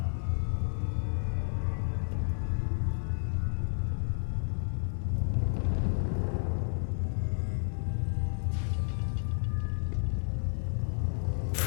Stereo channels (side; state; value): right; silent; digital silence